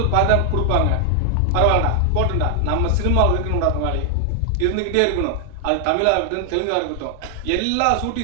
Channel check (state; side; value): different; both; correlation 0.00